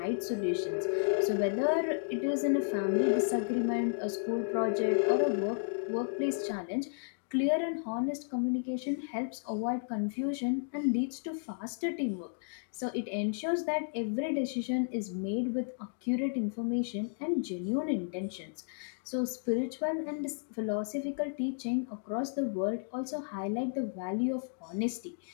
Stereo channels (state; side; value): silent; right; digital silence